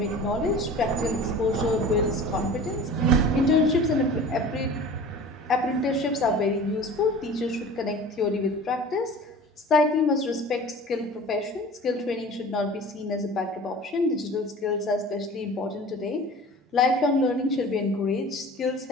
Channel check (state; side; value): normal; both; correlation 0.40